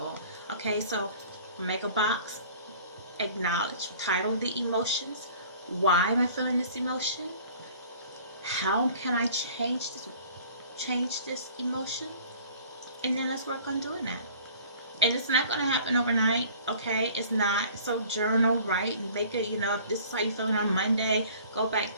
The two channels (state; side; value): inverted; both; correlation -0.49